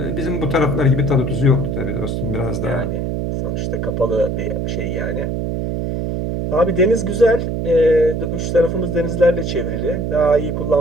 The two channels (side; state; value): right; noise; hum, 2 dB below the sound